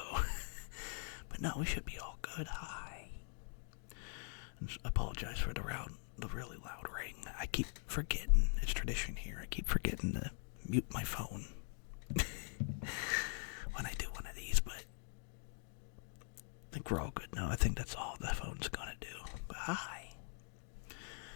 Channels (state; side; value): quieter; right; 39.8 dB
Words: But no, we should be all good. Hi. And apologize for the really loud ring. I keep forgetting. It's tradition here. I keep forgetting to mute my phone when I do one of these, but I think we're all good now. I think that's all the phone's gonna do. But hi.